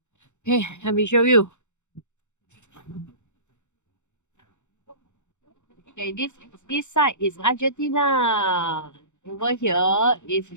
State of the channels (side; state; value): right; late; 0.84 ms